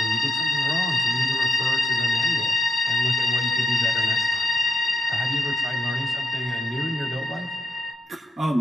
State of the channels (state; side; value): normal; both; correlation 0.84